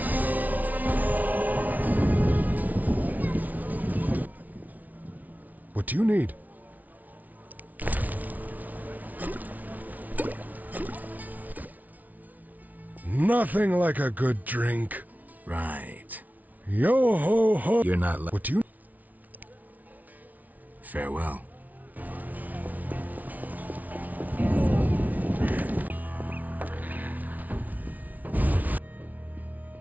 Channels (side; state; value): left; late; 0.076 ms